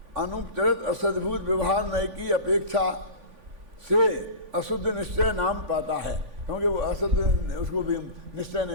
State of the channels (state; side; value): late; left; 3.5 ms